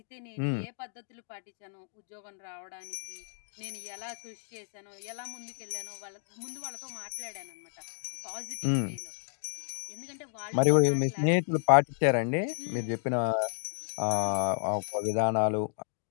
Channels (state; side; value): silent; right; digital silence